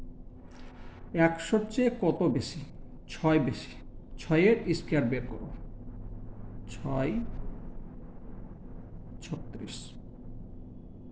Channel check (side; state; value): both; identical; correlation 1.00